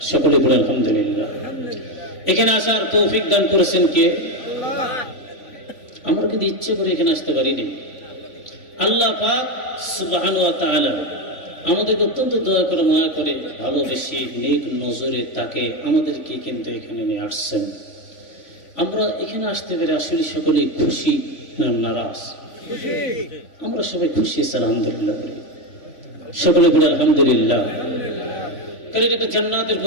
সকলে বলে আলহামদুলিল্লাহ। এখানে আসার তৌফিক দান করেছেন কে? আমরা কিন্তু ইচ্ছে করে এখানে আসতে পারিনি। আল্লাহ পাক সুবহানাহু ওয়া তাআলা আমাদেরকে অত্যন্ত দয়া করে, মায়া করে, ভালোবেসে, নেক নজরে তাকে আমাদেরকে কিন্তু এখানে নিয়ে আসছেন। আমরা এখানে আসতে পেরে আসলে সকলে খুশি না নারাজ? আমরা সবাই খুশি, আলহামদুলিল্লাহ। সকলে বলে আলহামদুলিল্লাহ। কারণ এটা জান্নাতের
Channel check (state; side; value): late; right; 3.5 ms